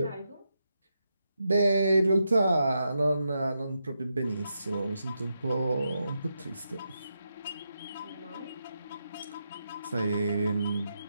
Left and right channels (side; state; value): both; inverted; correlation -0.84